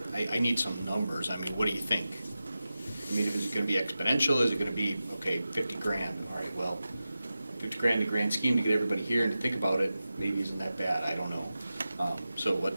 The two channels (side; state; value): both; inverted; correlation -0.93